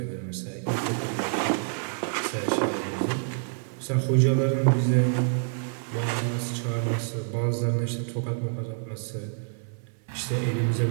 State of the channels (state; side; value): silent; left; 60 dB below the other